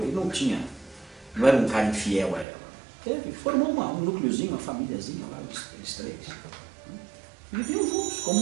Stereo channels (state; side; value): drops out; left; at 2.5 s